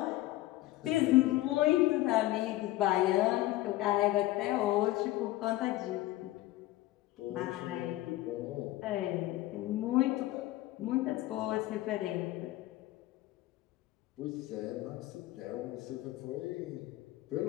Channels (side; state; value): right; quieter; 16.9 dB